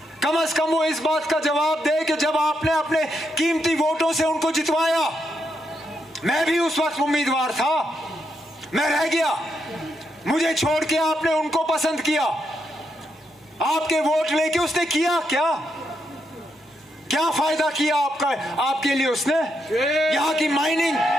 कम से कम वो इस बात का जवाब दे कि जब आपने अपने कीमती वोटों से उनको जितवाया, मैं भी उस वक्त उम्मीदवार था, मैं रह गया, मुझे छोड़ के आपने उनको पसंद किया, आपके वोट लेके उसने किया क्या? क्या फायदा किया आपका, आपके लिए उसने? यहाँ की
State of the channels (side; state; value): both; normal; correlation 0.81